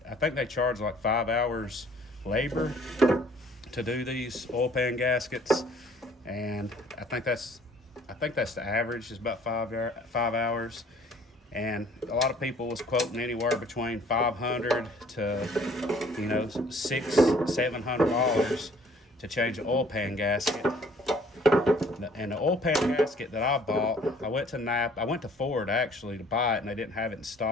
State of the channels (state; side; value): normal; both; correlation 0.56